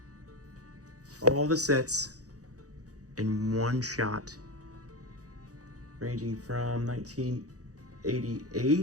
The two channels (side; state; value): left; late; 0.67 ms